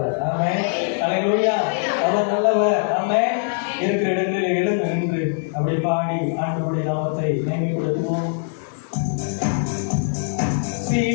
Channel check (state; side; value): silent; right; 57 dB below the other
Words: ஆமென். அல்லேலூயா. அவர் நல்லவர். ஆமென். இருக்கிற இடங்களில் எழுந்து நின்று அப்படி பாடி ஆண்டவருடைய நாமத்தை மேன்மைப்படுத்துவோம்.